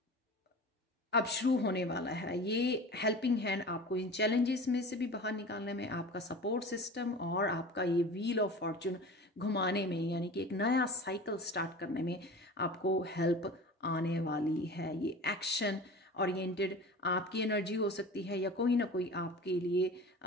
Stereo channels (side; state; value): both; normal; correlation 0.36